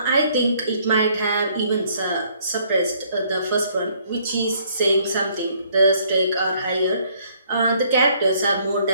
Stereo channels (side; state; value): both; inverted; correlation -0.64